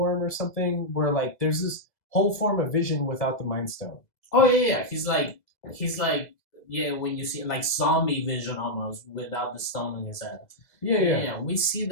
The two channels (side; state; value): right; late; 2.0 ms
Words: or something where like there's this whole form of Vision without the Mind Stone. Oh yeah. He's like yeah, when you see like zombie Vision almost without the stone in his head. Yeah. We see